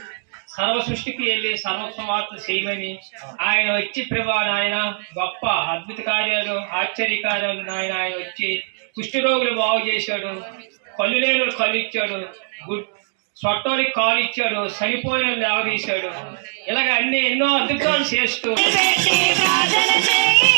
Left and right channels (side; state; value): left; silent; 65 dB below the other